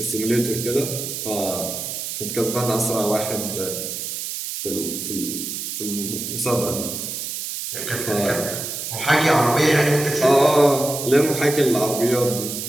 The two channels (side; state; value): right; noise; hiss, 5 dB below the sound